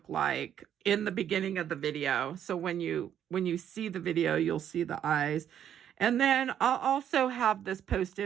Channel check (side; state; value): left; quieter; 9.8 dB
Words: like in the beginning of the video. So when you see the video, you'll see the eyes. And then I'll also have this